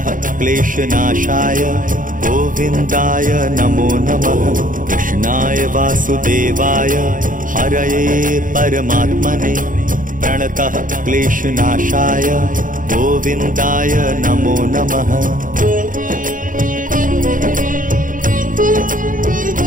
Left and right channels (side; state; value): left; late; 0.39 ms